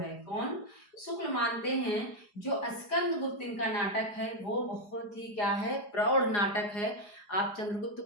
कौन? शुक्ल मानते हैं जो स्कंदगुप्त इनका नाटक है वो बहुत ही क्या है? प्रौढ़ नाटक है। आप चंद्रगुप्त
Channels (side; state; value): right; late; 4.8 ms